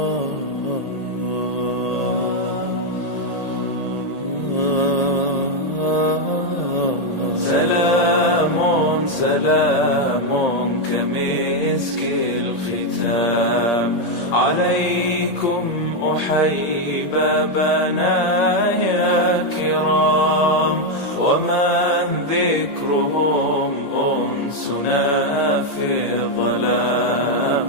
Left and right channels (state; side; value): late; right; 1.8 ms